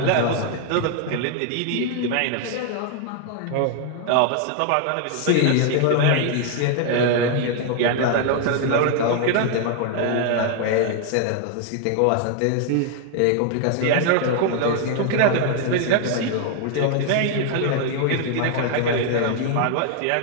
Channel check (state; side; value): different; both; correlation 0.00